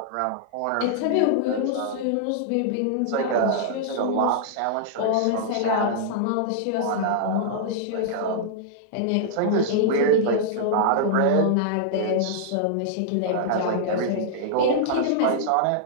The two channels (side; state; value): both; different; correlation -0.01